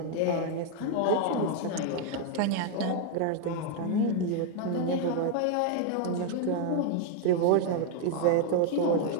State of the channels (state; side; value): different; both; correlation 0.00